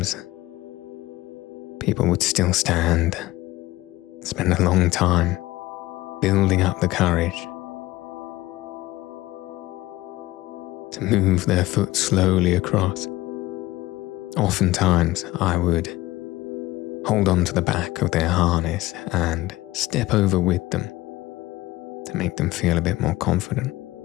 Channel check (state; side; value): quieter; right; 18.0 dB